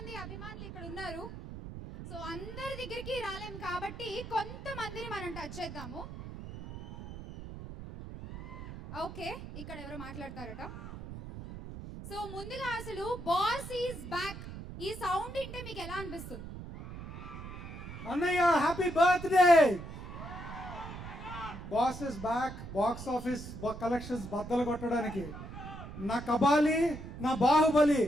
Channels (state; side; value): noise; right; rumble, 10 dB below the sound